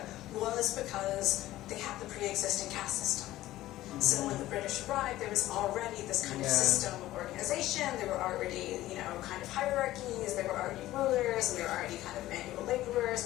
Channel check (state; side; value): quieter; right; 15.5 dB